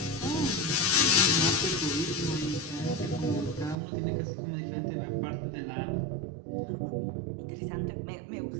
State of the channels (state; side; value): drops out; left; at 3.8 s